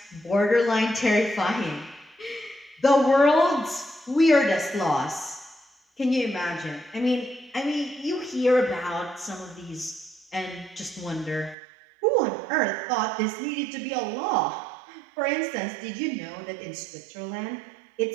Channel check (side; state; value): left; drops out; at 11.6 s